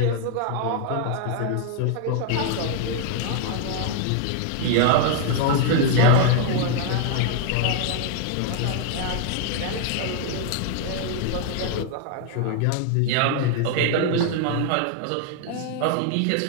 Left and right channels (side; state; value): both; different; correlation 0.00